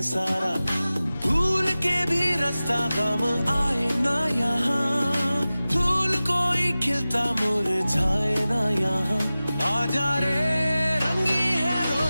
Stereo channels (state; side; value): inverted; both; correlation -0.96